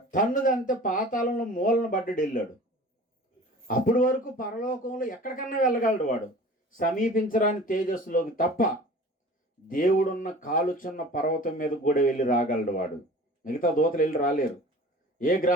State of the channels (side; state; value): both; normal; correlation 0.43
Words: తన్నుదంతే పాతాళంలో మూలను పడ్డాడు, వెళ్ళాడు. అప్పటి వరకు పరలోకంలో ఎక్కడికన్నా వెళ్ళగలడు వాడు, సమీపించరాని తేజస్సులోకి తప్ప. దేవుడున్న కాలుచున్న పర్వతం మీద కూడా వెళ్ళి రాగలడు వాడు, మిగతా దూతలు వెళ్ళి రాలేరు. ఏ